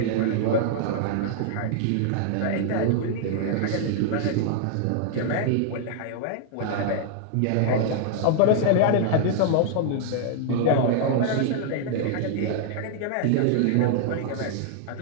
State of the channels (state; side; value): different; both; correlation -0.01